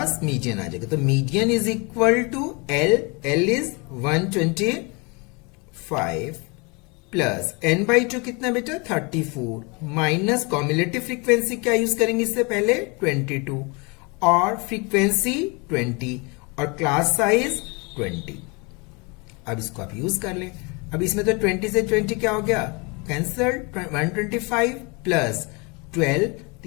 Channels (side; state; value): right; quieter; 29.7 dB